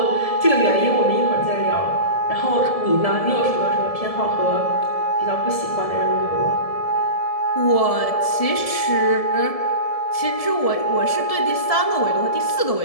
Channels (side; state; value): right; late; 1.7 ms